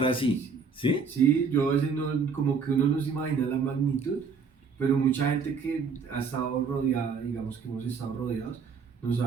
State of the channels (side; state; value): left; quieter; 5.3 dB